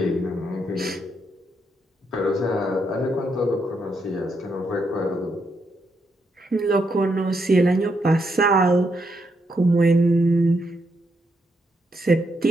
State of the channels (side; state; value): both; normal; correlation 0.79